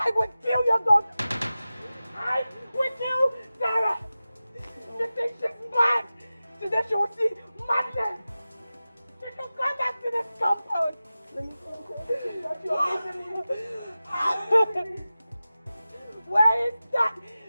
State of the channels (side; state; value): both; inverted; correlation -0.95